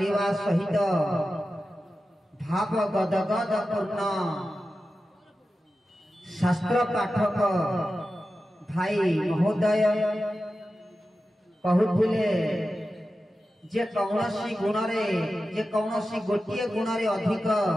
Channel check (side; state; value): both; normal; correlation 0.93